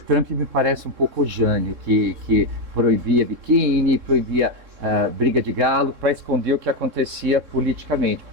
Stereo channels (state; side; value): late; left; 3.7 ms